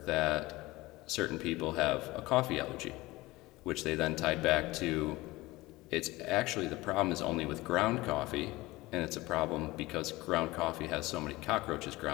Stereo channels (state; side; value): quieter; right; 20.1 dB